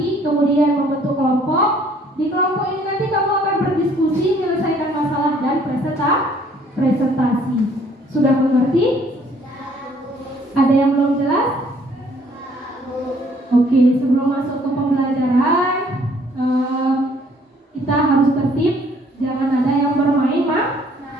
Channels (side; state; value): both; normal; correlation 0.61